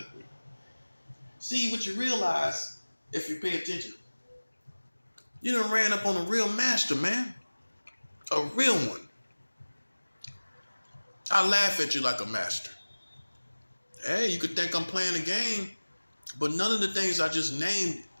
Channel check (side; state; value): both; inverted; correlation -1.00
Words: See, what you realize, if you pay attention, you done ran up on a real master, man. A real one. I laugh at you like a master. Hey, you could think I'm playing a game, but none of the things I just named